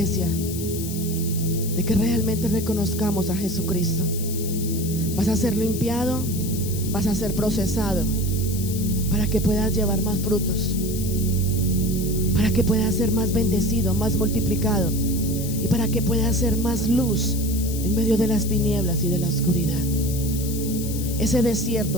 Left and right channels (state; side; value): noise; left; hiss, 9 dB below the sound